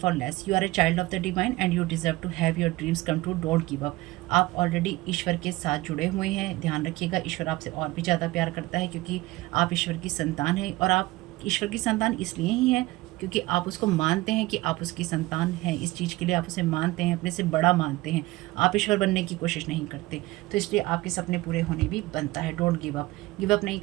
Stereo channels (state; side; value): quieter; left; 19.8 dB